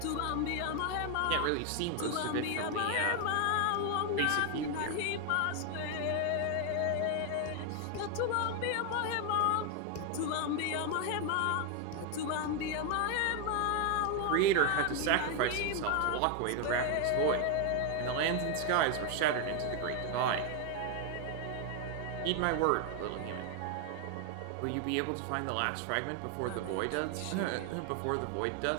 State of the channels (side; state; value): both; different; correlation 0.01